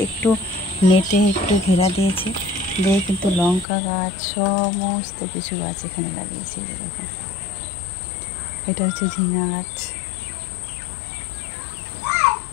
একটু নেটে একটু ঘেরা দিয়েছে, দিয়ে কিন্তু লঙ্কা গাছ সমস্ত কিছু গাছ এখানে লাগিয়েছে। দেখো, এটা হচ্ছে ঝিঙা গাছ,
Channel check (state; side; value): drops out; right; at 3.7 s